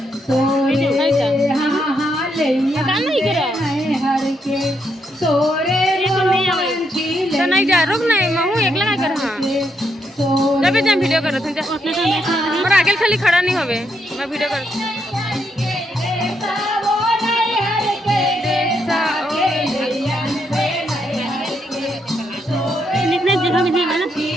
तोरे हाँ हाँ ले आनबे नहीं हर के तोरे मोरो पाछी ले नहीं जा रुक नहीं मैं हूँ एकला काय कर हाँ जब भी जब वीडियो करो तुम जा और आगे खाली खड़ा नहीं होवे मैं वीडियो कर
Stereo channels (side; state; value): both; normal; correlation 0.78